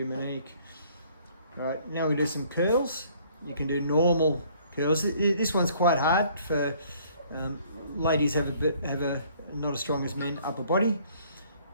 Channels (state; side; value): inverted; both; correlation -0.59